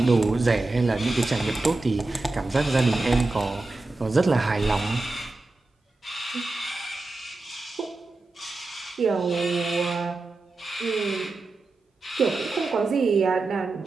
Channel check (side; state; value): left; quieter; 3.2 dB